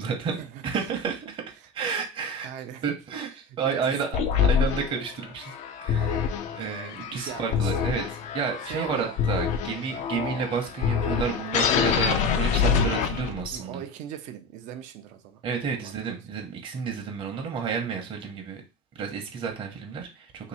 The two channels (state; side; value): normal; both; correlation 0.26